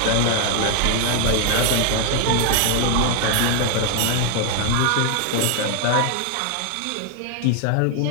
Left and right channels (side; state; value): both; different; correlation 0.00